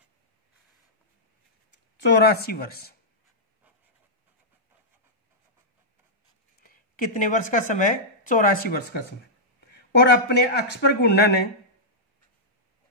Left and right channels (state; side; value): normal; both; correlation -0.11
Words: 84 वर्ष। कितने वर्ष का समय? 84 वर्ष का समय। और अपने अक्ष पर घूर्णन है